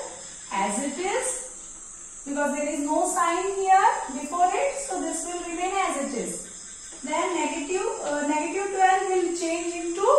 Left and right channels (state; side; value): identical; both; correlation 1.00